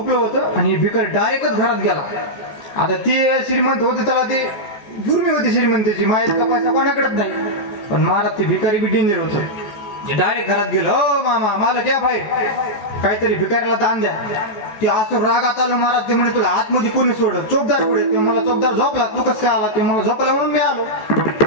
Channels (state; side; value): late; right; 14 ms